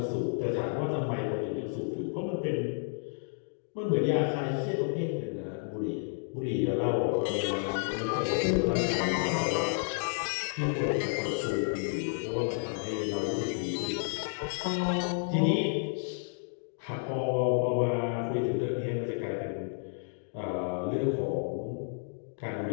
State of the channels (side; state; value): right; silent; 57 dB below the other